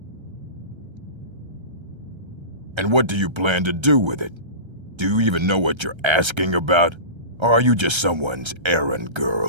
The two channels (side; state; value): left; late; 1.3 ms